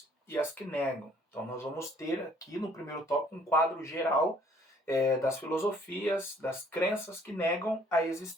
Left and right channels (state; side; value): normal; both; correlation 0.60